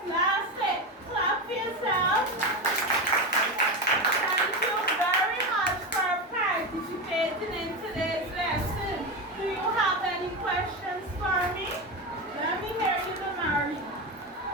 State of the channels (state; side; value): normal; both; correlation 0.18